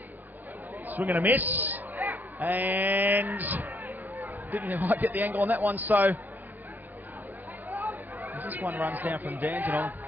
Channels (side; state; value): left; late; 0.084 ms